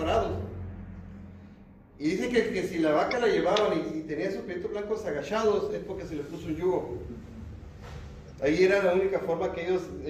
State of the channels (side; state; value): both; identical; correlation 1.00